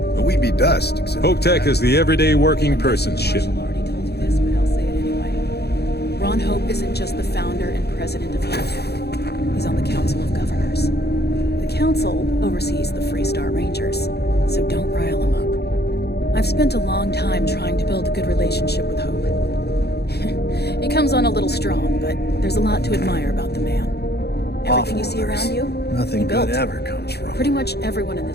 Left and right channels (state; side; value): late; right; 0.48 ms